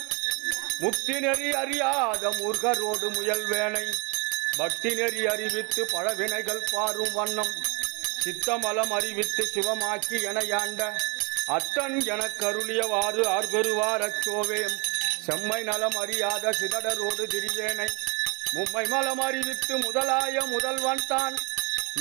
முக்தி நெறி அறியாத மூர்கரோடு முயல்வேனை பக்தி நெறி அறிவித்து பழவினைகள் பாரும் வண்ணம் சித்தமலம் அறிவித்து சிவமாக்கி என யாண்ட அத்தன் எனக் கருளியவாறு ஆர்பெறுவார் அச்சோவேம் செம்மை நலம் அறியாத சிதடரோடு திரிவேனை மும்மை மலம் அறிவித்து முதலாய முதல்வன் தான்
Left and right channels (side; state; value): left; quieter; 31.2 dB